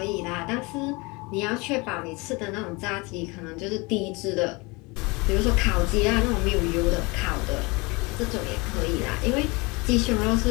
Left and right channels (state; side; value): quieter; right; 26.2 dB